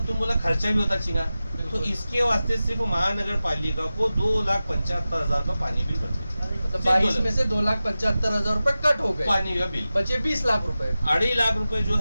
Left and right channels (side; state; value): both; inverted; correlation -0.95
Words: तुम बोला खर्चा भी होता चीना, तो इसके वास्ते सिर्फ महानगर पालिका को 2,75,000 का पानी बिल बचे। मतलब 22 में से 2,75,000 रुपए कट हो गए, पानी का बिल बचे 20 लाख रुपए। 2.5 लाख रुपए जो